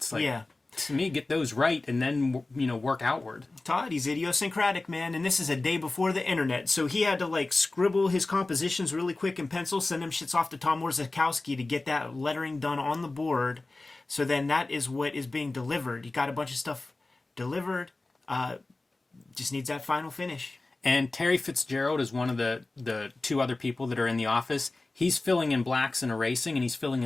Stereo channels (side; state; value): right; quieter; 3.2 dB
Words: Like, yeah. To me, get those right and then, work outward. Todd, he's idiosyncratic, man, and this is a day before the internet, so he had to, like, scribble his compositions really quick in pencil, send them shits off to Tom Orzechowski to get that lettering done on the board, so then that is what is being delivered. He got a bunch of stuff delivered, just needs that final finish. And Terry Fitzgerald is one of the two other people that are in the office. He's filling in blacks and erasing, and he's filling